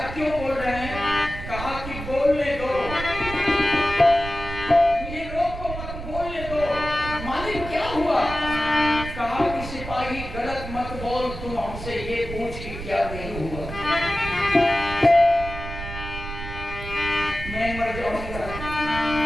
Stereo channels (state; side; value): noise; right; rumble, 9 dB below the sound